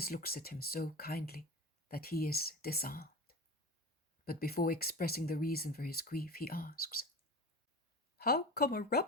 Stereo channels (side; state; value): both; normal; correlation 0.31